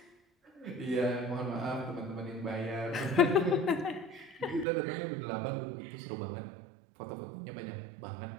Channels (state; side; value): drops out; left; at 4.7 s